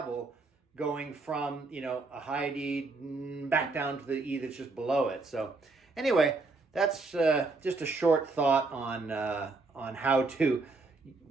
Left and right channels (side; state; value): left; quieter; 3.6 dB